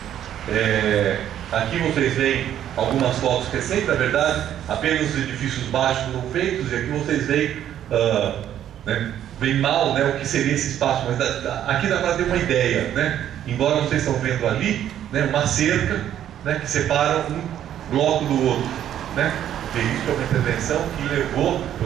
Aqui vocês veem algumas fotos recentes, na verdade, apenas os edifícios baixos foram feitos, e aqui vocês veem bem mal o que seria esse espaço, mas aqui dá para ter uma ideia, embora vocês estão vendo ali uma cerca que separa um bloco do outro, porque isso é uma intervenção que levou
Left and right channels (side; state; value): left; quieter; 10.8 dB